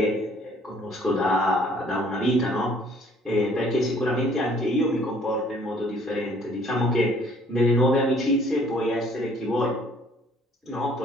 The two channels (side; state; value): both; normal; correlation 0.58